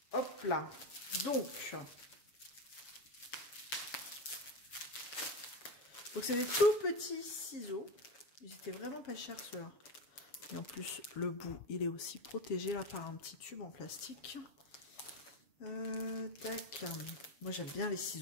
Hop là, donc c'est des tout petits ciseaux, ils étaient vraiment pas chers ceux-là. Et en plus, le bout, il est aussi protégé là par un petit tube en plastique. Tac, moi j'aime bien les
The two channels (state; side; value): late; right; 7.3 ms